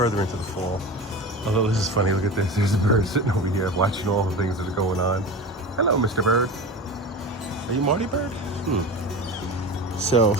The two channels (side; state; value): both; normal; correlation 0.30